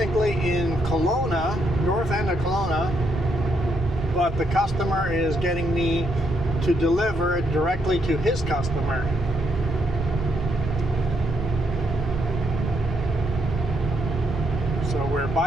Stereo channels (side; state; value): left; noise; rumble, 13 dB below the sound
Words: in Kelowna, north end of Kelowna, but the customer is getting me to deliver it directly to his customer. So we're